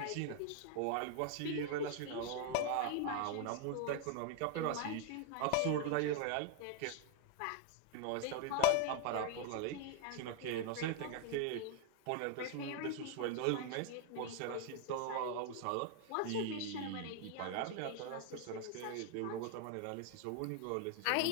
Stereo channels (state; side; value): different; both; correlation 0.00